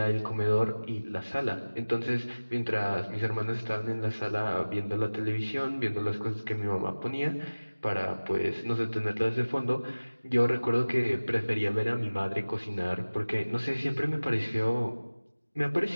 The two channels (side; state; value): both; inverted; correlation -1.00